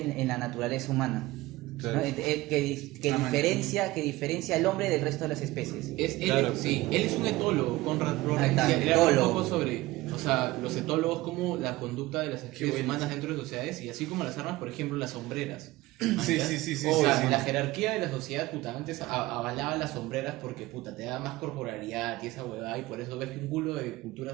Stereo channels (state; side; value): quieter; left; 18.8 dB